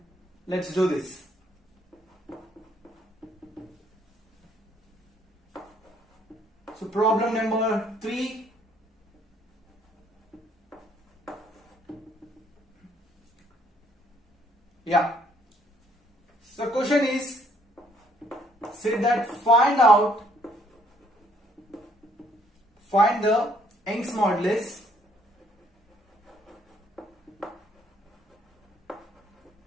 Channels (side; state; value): both; normal; correlation 0.65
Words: let's do this. So problem number 3. Yeah. So question is said that find the Young's modulus